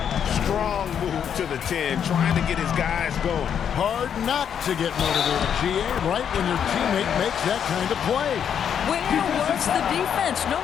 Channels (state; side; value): quieter; right; 8.3 dB